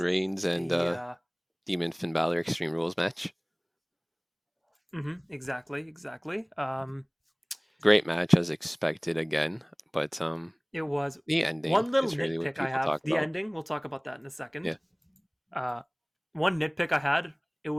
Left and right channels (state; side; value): identical; both; correlation 1.00